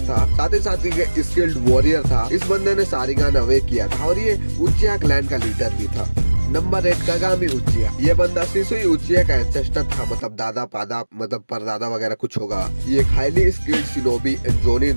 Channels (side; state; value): both; inverted; correlation -1.00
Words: था, साथ ही साथ एक स्किल्ड वॉरियर था। इस बंदे ने सारिंगान अवेक किया था और ये उचिहा क्लैन का लीडर भी था। Number 8 Kagami Uchiha. ये बंदा सिसुई उचिहा का एंसेस्टर था, मतलब दादा पादा मतलब परदादा वगैरह कुछ होगा। ये एक हाईली स्किल्ड शिनोबी जोनिन